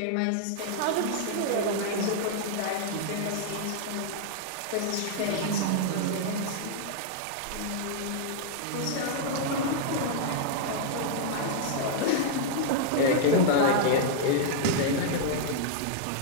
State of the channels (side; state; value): both; different; correlation -0.01